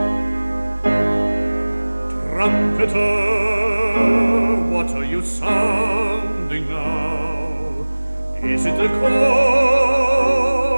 Trumpeter, what are you sounding now? Is it the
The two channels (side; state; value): both; inverted; correlation -1.00